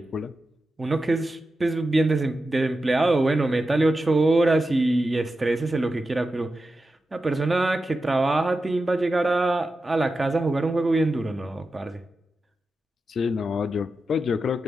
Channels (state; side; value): normal; both; correlation 0.91